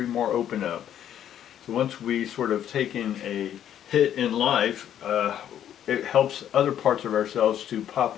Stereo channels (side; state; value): right; quieter; 10.4 dB